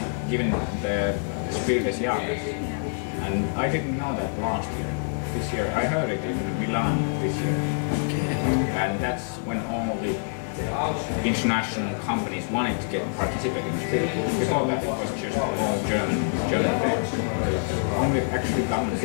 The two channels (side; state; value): right; silent; digital silence